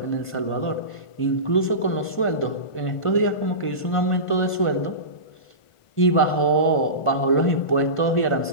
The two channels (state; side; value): late; right; 1.5 ms